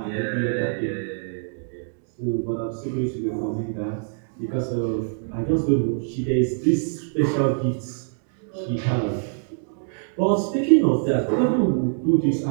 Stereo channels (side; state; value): left; silent; digital silence